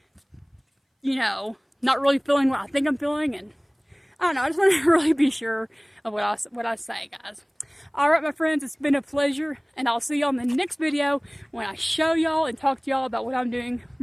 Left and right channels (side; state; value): both; identical; correlation 1.00